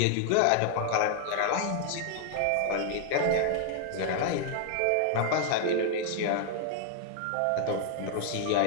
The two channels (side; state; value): both; different; correlation 0.00